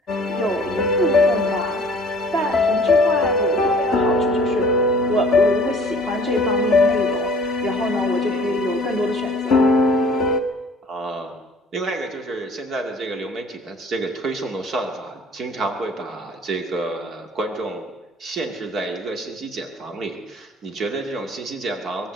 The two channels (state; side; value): normal; both; correlation 0.52